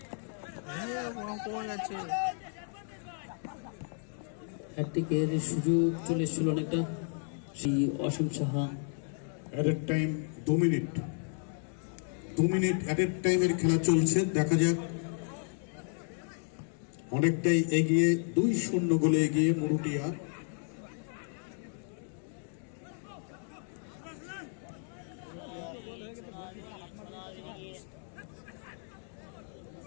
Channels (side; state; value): right; silent; 56 dB below the other